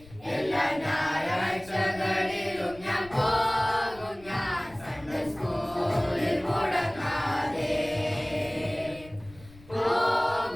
എല്ലാ ഞായറാഴ്ചകളിലും ഞാൻ പോകും ഞാൻ സൺഡേ സ്കൂളിൽ മുടങ്ങാതെ.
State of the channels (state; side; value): noise; left; rumble, 22 dB below the sound